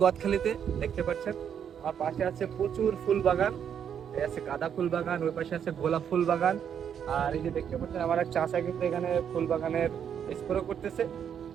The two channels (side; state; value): left; quieter; 8.4 dB